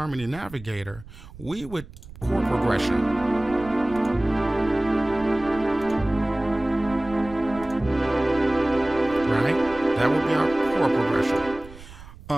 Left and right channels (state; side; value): noise; right; rumble, 18 dB below the sound